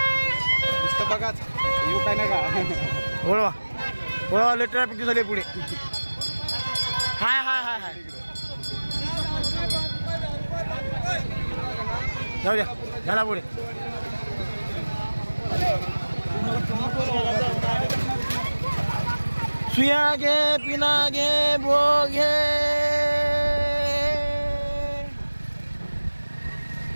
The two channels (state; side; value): inverted; both; correlation -1.00